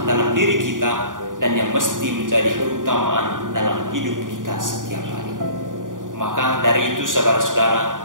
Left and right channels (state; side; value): late; left; 0.89 ms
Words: dalam diri kita dan yang mesti menjadi keutamaan dalam hidup kita setiap hari. Maka dari itu